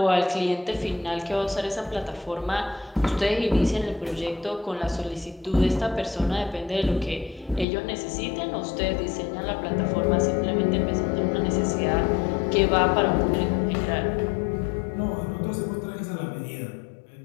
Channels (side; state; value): right; drops out; at 7.7 s